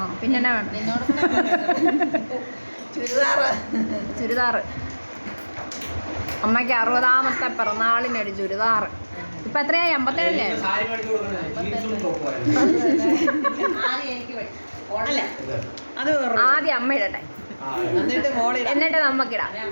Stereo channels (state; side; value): inverted; both; correlation -1.00